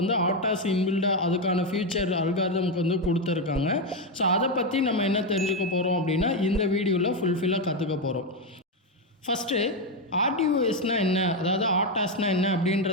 ஆட்டாஸ் இன்பில்டாக அதுக்கான ஃபியூச்சர் அல்காரிதம்க்கு வந்து கொடுத்துருக்காங்க. ஸோ அதை பற்றி நம்ம என்ன தெரிஞ்சுக்க போகிறோம் அப்படின்னா இந்த வீடியோவில் ஃபுல்ஃபில்லாக கற்றுக்க போகிறோம். ஃபஸ்ட்டு ஆர்டிஓஎஸ்னால் என்ன, அதாவது ஆட்டாஸ்னால் என்ன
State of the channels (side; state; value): both; normal; correlation 0.07